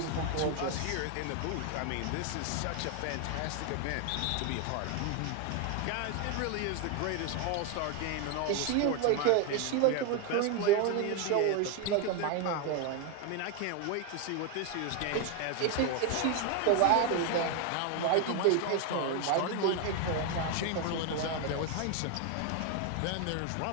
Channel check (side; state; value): both; different; correlation 0.01